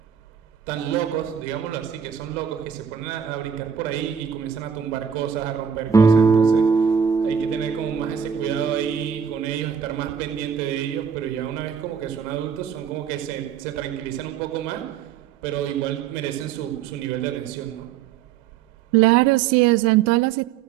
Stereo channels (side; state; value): left; quieter; 7.7 dB